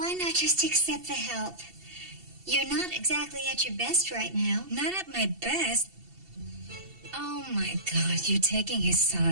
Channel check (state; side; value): late; left; 2.7 ms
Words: not just accept the help? You're not exactly at your best right now. Not at my best. Oh my God, you're taking his